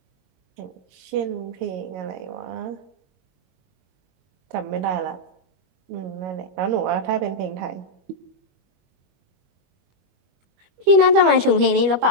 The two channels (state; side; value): late; left; 21 ms